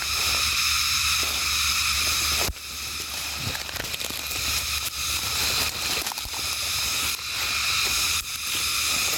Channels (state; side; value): identical; both; correlation 1.00